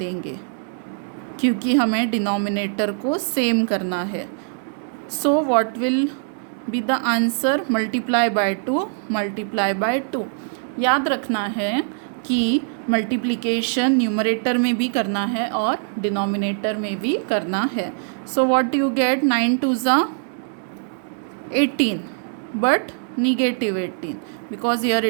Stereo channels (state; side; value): silent; left; 64 dB below the other